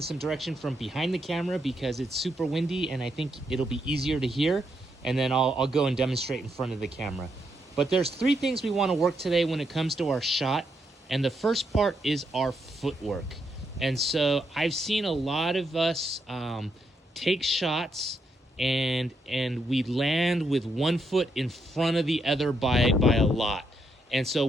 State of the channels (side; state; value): both; normal; correlation 0.79